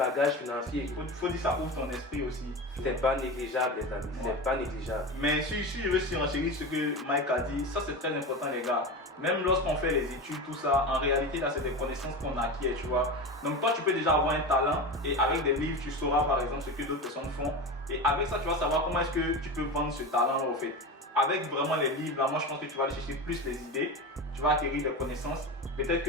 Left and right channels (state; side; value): normal; both; correlation 0.24